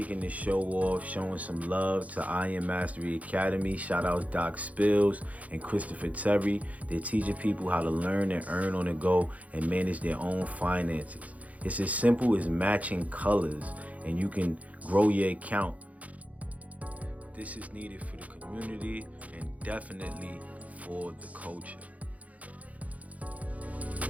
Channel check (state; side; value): late; left; 0.069 ms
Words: this show off, showing some love to Iron Mastery Academy. Shout out Doc Spills and Christopher Terry. They're teaching people how to learn and earn on the go and manage their own finances. It's as simple as matching colors, and you can grow your account. This is needed for the community and definitely for the culture.